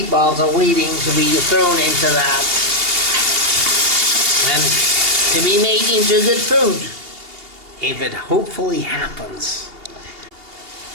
are waiting to be thrown into that. And to be made into good food. If it hopefully happens.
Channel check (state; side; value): late; left; 2.8 ms